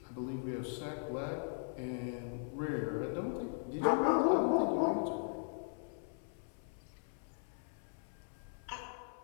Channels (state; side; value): silent; right; 52 dB below the other